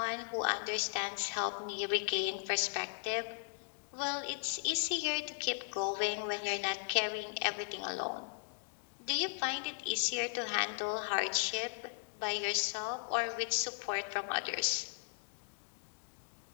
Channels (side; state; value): right; silent; digital silence